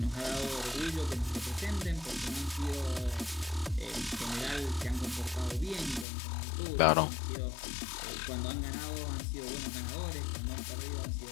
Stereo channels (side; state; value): right; drops out; at 6.1 s